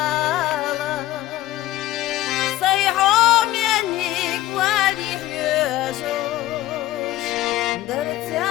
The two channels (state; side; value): quieter; right; 15.5 dB